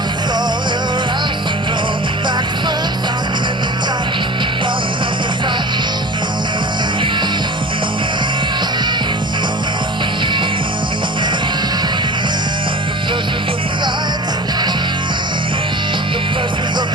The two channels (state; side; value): normal; both; correlation 0.36